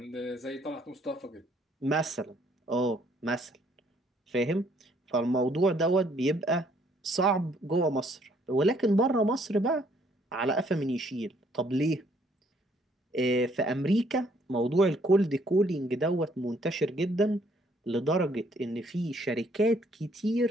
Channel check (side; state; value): both; normal; correlation 0.65